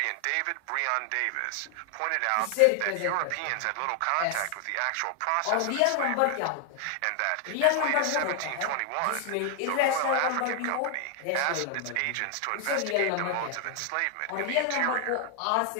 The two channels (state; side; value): different; both; correlation 0.00